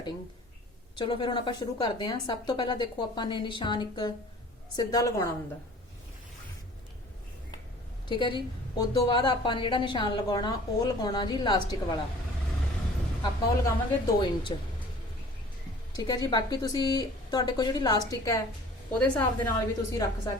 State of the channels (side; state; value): both; normal; correlation 0.47